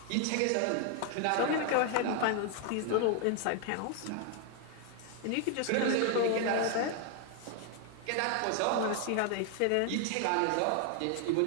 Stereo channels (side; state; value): both; different; correlation 0.00